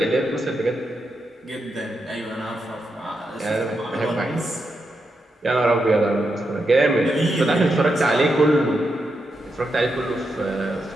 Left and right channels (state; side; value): normal; both; correlation 0.85